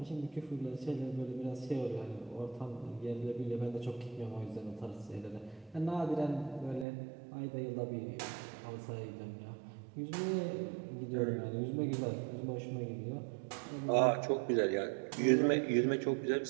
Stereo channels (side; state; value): left; drops out; at 6.9 s